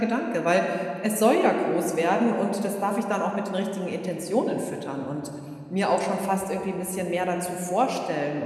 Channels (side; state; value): both; identical; correlation 1.00